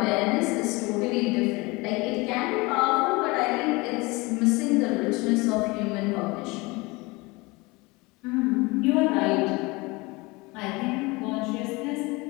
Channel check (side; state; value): right; quieter; 24.3 dB